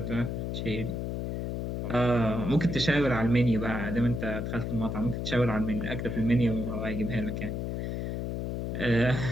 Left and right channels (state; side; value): noise; left; hum, 2 dB below the sound